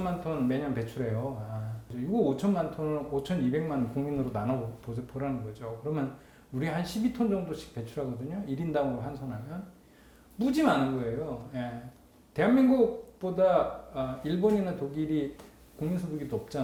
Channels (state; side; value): identical; both; correlation 1.00